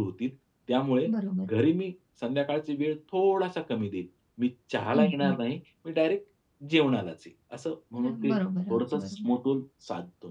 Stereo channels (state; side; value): identical; both; correlation 1.00